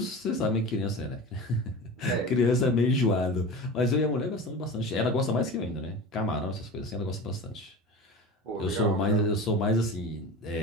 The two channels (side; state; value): both; normal; correlation 0.32